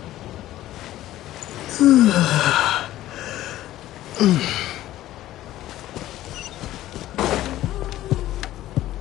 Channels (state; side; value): quieter; right; 14.4 dB